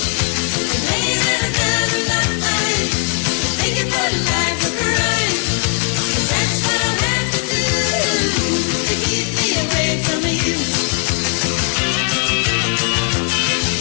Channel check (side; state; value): right; quieter; 39.1 dB